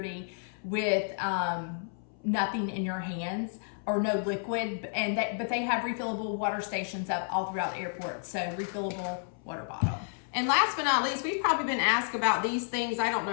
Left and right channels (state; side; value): silent; right; 57 dB below the other